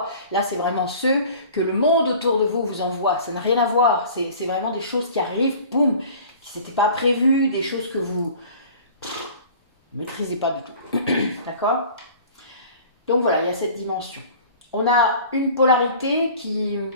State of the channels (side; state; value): both; inverted; correlation -0.45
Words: Là, c'est vraiment ceux que le monde autour de vous vous envoie. Ça n'a rien à voir. C'est vraiment des choses qui arrivent, boum, qui n'étaient pas prévues, des choses que vous ne maîtrisez pas du tout. D'accord? Donc voilà, il y a cette dimension. On a une polarité qui